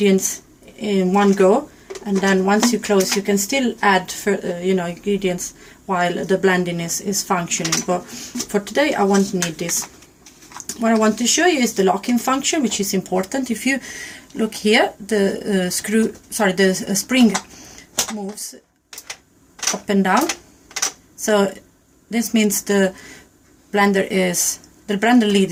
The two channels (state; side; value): identical; both; correlation 1.00